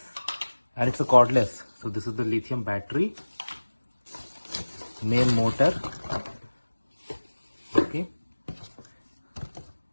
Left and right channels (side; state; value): both; inverted; correlation -1.00